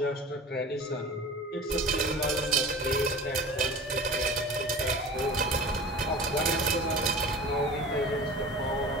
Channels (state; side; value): normal; both; correlation 0.37